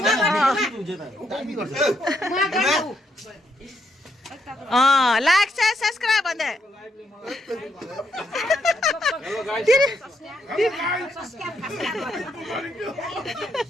लाइक शेयर सब्सक्राइब भन्दै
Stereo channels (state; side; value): normal; both; correlation 0.77